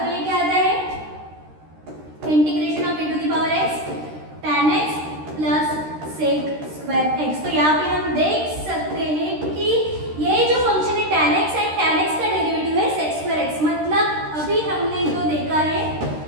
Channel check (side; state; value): left; late; 13 ms